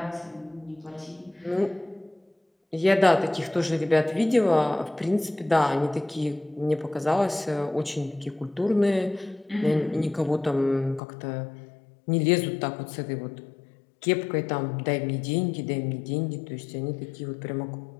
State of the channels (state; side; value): drops out; right; at 11.0 s